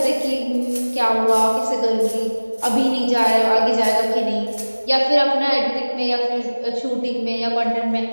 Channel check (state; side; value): inverted; both; correlation -1.00